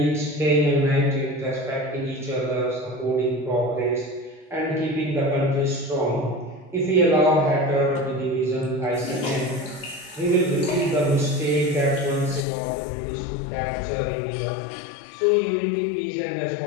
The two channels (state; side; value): drops out; right; at 12.5 s